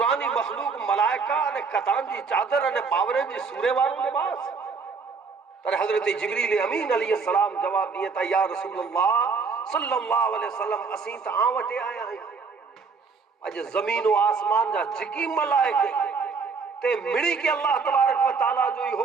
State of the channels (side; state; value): left; quieter; 5.0 dB